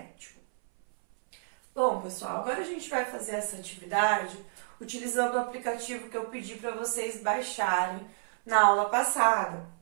Bom, pessoal, agora a gente vai fazer essa atividade utilizando o aplicativo que eu pedi para vocês baixarem na aula passada,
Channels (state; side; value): silent; left; 58 dB below the other